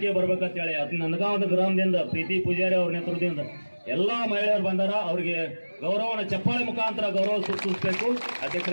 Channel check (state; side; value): inverted; both; correlation -1.00